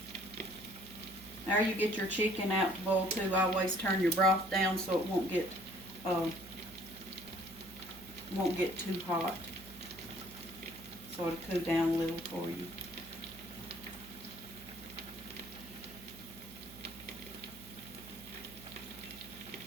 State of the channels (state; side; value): noise; right; hum, 18 dB below the sound